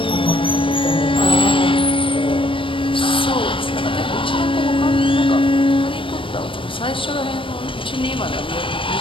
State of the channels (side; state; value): right; late; 0.25 ms